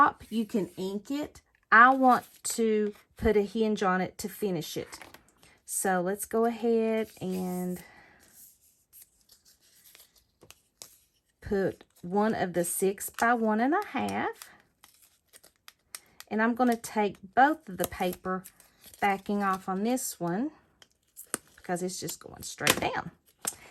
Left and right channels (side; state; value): both; identical; correlation 1.00